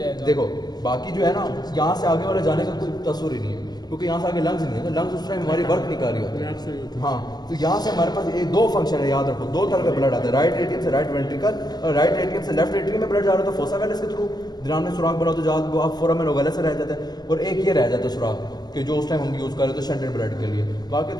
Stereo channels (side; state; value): right; late; 0.19 ms